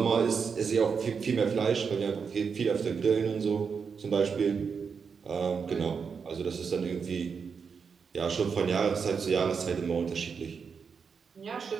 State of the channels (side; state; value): left; quieter; 5.9 dB